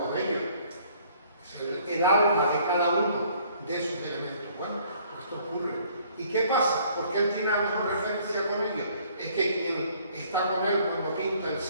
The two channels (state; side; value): inverted; both; correlation -0.59